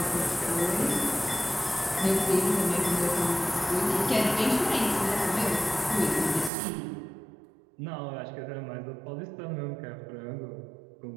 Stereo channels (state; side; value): drops out; left; at 6.5 s